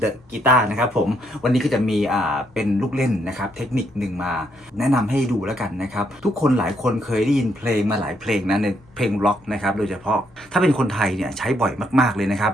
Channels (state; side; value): normal; both; correlation 0.74